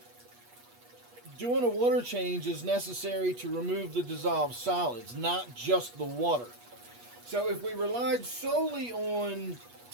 doing a water change is necessary to remove the dissolved solids, not just the water. So if we relied solely on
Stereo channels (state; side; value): late; left; 8.3 ms